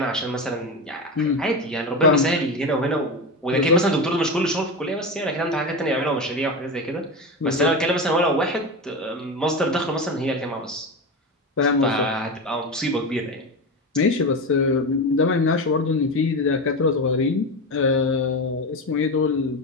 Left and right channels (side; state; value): both; normal; correlation 0.20